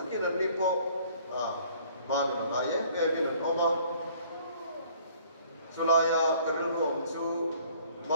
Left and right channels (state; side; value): inverted; both; correlation -0.57